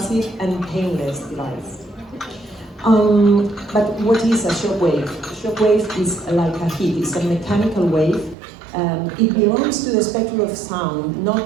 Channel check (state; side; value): drops out; left; at 8.3 s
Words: and painless device. But what is a shockwave? Shockwave is like a heat, it's a mechanical wave. It belongs to the spectrum of sound,